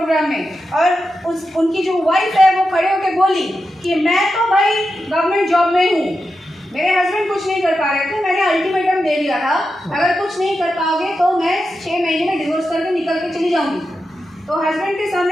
में। और उनकी जो वाइफ है वो खड़े होकर बोली कि मैं तो भाई गवर्नमेंट जॉब में हूँ, मेरे हस्बैंड कुछ नहीं कर पा रहे थे, मैंने अल्टीमेटम दे दिया था अगर कुछ नहीं कर पाओगे तो मैं 6 महीने में डिवोर्स करके निकल के चली जाऊंगी। तो हस्बैंड के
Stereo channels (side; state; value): both; normal; correlation 0.89